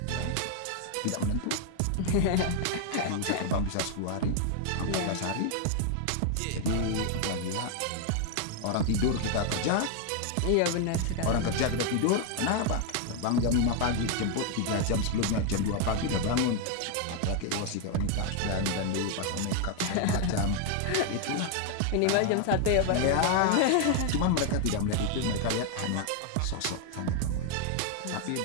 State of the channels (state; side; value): different; both; correlation 0.00